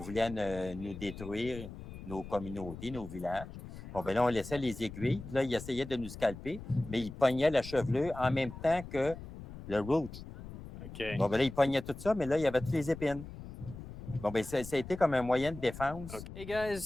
nous détruire nos communautés, nos villages. Bon, ben là, on laissait les aiguilles. Là, il essayait de nous scalper, mais il pognait la chevelure en même temps que le root. Okay. Bon, ben là, il pognait tout ça, mais là, il y avait toutes les épines. Bon, ben ça a été comme un moyen de défense. Okay. Hey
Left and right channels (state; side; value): noise; left; rumble, 12 dB below the sound